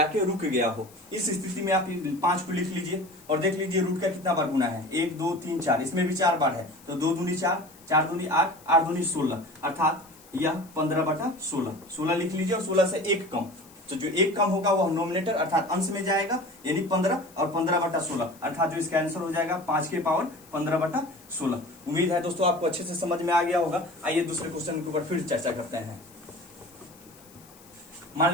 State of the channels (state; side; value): noise; left; hiss, 24 dB below the sound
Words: गया हो, इस स्थिति में आप 5 को लिख लीजिए और देख लीजिए रूट का कितना बार गुना है, 1 2 3 4, इसमें भी 4 बार है, तो 2 दूनी 4, 4 दूनी 8, 8 दूनी 16, अर्थात यह 15/16, 16 लिख लीजिए। और 16 से 1 कम, तो जो 1 कम होगा वह नोमिनेटर अर्थात अंश में जाएगा, यानी 15, और 15/16, अर्थात जो इसका आंसर हो जाएगा 5 के पावर 15/16। उम्मीद है दोस्तों आपको अच्छे से समझ में आ गया होगा। आइए दूसरे क्वेश्चन के ऊपर फिर चर्चा करते हैं। मान